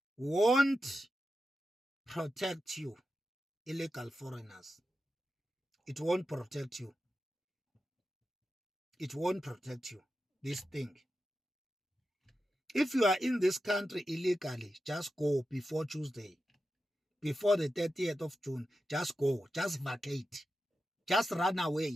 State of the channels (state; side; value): normal; both; correlation 0.90